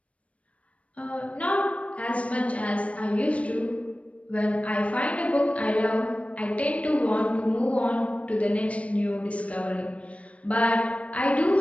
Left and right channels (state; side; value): late; right; 0.064 ms